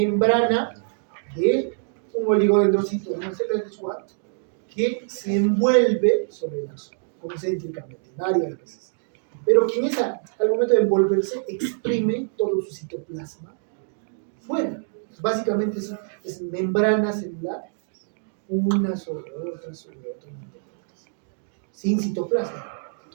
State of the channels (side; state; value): left; silent; digital silence